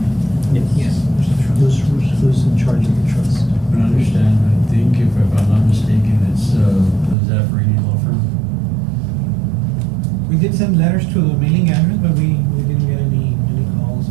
Yes. Who's in charge of the trust? From what I understand, I think if I'm not mistaken, it's Zaffarini Law Firm. We did send letters to the mailing address, but we didn't get any calls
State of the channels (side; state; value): left; drops out; at 7.2 s